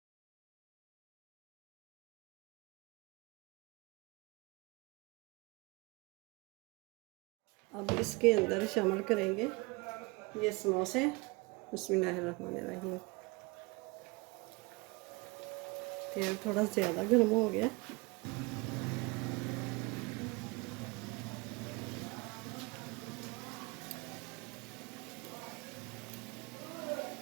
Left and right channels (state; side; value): quieter; left; 25.6 dB